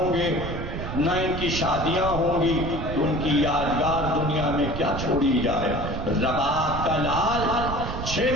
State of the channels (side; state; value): right; noise; rumble, 5 dB below the sound